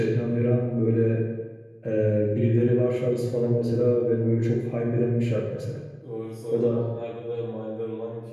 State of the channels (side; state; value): both; identical; correlation 1.00